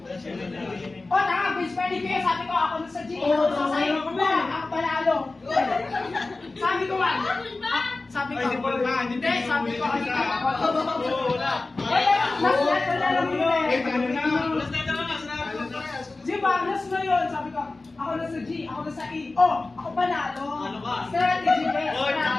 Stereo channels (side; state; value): right; quieter; 3.4 dB